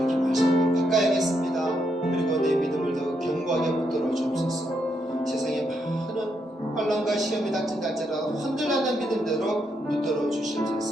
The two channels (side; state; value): both; normal; correlation 0.79